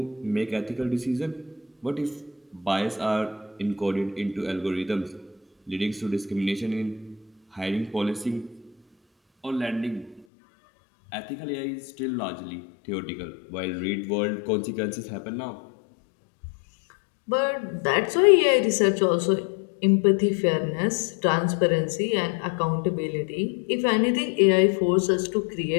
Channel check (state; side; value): drops out; right; at 10.2 s